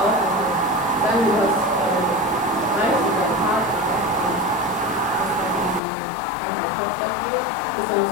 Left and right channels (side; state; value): right; drops out; at 5.8 s